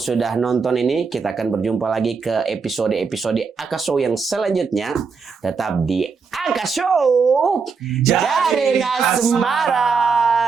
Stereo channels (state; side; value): quieter; left; 5.2 dB